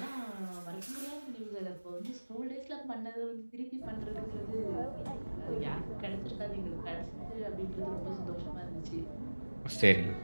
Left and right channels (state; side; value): inverted; both; correlation -1.00